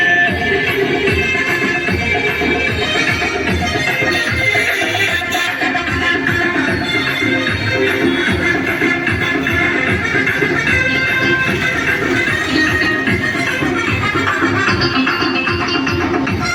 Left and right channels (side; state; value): both; identical; correlation 1.00